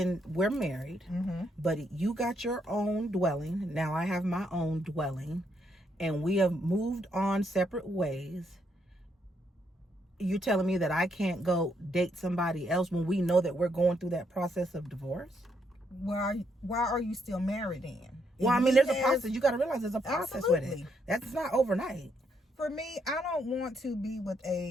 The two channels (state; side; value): normal; both; correlation 0.75